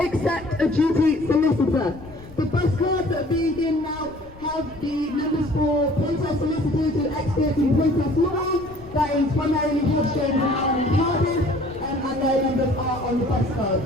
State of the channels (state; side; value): noise; left; rumble, 21 dB below the sound